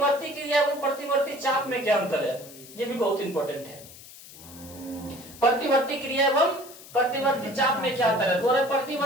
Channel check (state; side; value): noise; left; hiss, 18 dB below the sound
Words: क्रिया एवं प्रतिवर्ती चाप में क्या अंतर है? ये भी बहुत इंपॉर्टेंट है। प्रतिवर्ती क्रिया एवं प्रतिवर्ती चाप में क्या अंतर है? तो